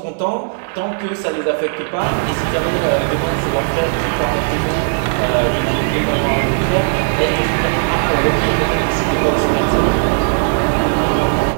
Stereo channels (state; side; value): silent; left; 66 dB below the other